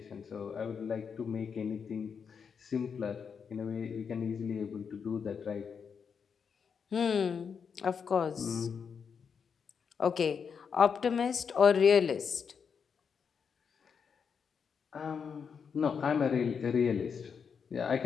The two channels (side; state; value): right; quieter; 6.4 dB